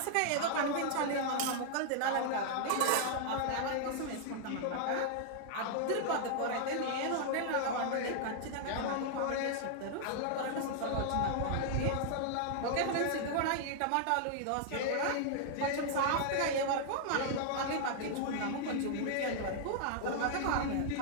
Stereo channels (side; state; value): both; different; correlation -0.01